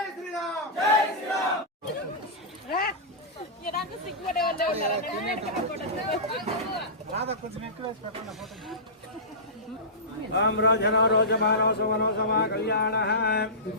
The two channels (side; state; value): both; normal; correlation -0.19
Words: రామరాజనో రోజమానో సుమనో సమా కళ్యాణ